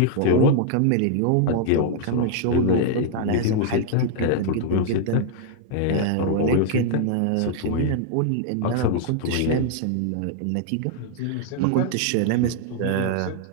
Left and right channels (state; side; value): different; both; correlation 0.00